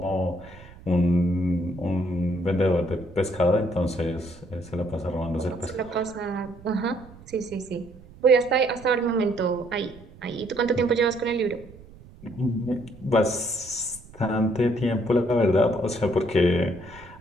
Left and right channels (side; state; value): right; noise; rumble, 21 dB below the sound